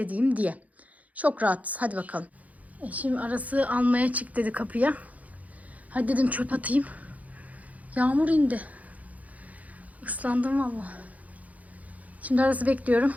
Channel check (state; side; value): late; left; 0.073 ms